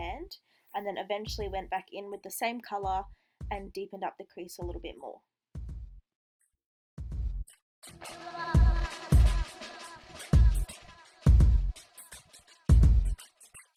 and then eventually went back in with the same colour and deepened up the crease a little bit more.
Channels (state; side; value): identical; both; correlation 1.00